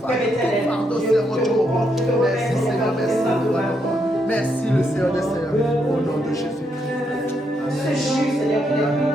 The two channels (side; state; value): both; normal; correlation 0.78